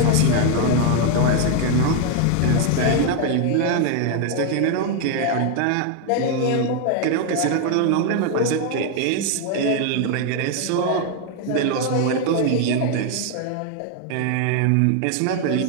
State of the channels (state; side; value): different; both; correlation 0.01